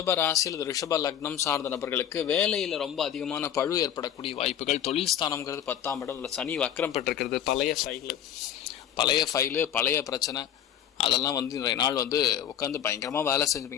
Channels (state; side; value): quieter; right; 9.9 dB